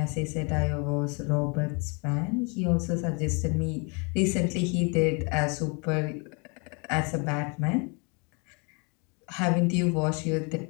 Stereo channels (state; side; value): quieter; right; 33.0 dB